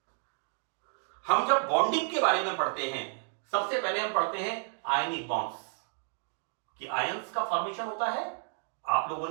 हम जब बॉन्डिंग के बारे में पढ़ते हैं, सबसे पहले हम पढ़ते हैं आयनिक बॉन्ड्स, कि आयंस का फॉर्मेशन होता है। आप लोगों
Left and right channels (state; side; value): silent; left; 57 dB below the other